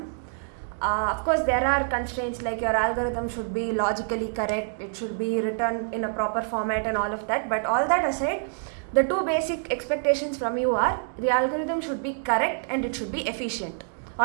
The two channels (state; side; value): silent; left; digital silence